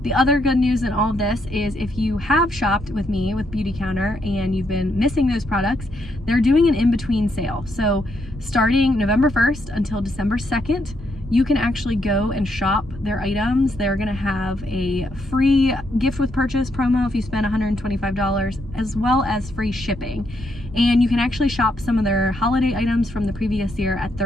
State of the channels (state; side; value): normal; both; correlation 0.77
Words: the other good news in all of this is if you have shopped with me with BeautyCounter and you've been missing those products, they're doing an in-between sale. So starting November 1st until December 2nd, you can actually go and shop their items. They're gonna have a free gift with purchase promo if you spend $125, as well as free shipping. And you can actually shop some of their holiday items from the previous year at